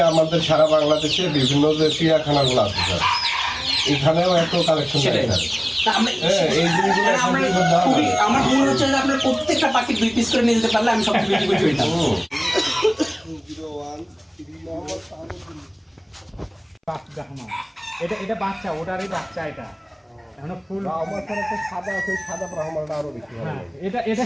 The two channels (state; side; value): identical; both; correlation 1.00